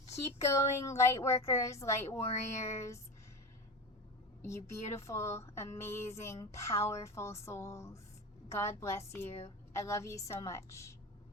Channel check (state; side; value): normal; both; correlation 0.25